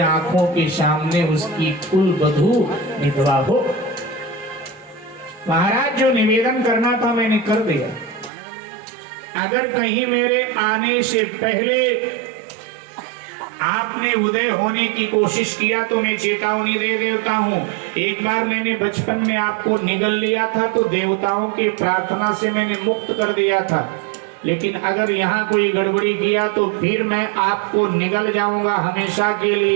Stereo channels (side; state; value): left; drops out; at 8.3 s